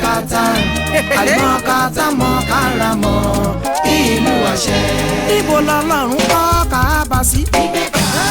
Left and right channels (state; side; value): identical; both; correlation 1.00